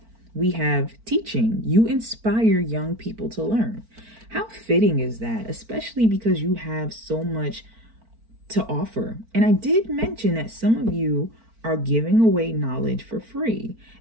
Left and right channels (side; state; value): left; late; 4.4 ms